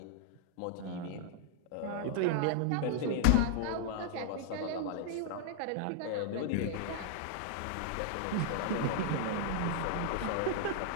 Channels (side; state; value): both; different; correlation -0.01